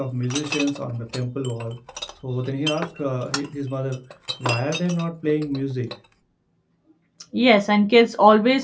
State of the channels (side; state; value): both; identical; correlation 1.00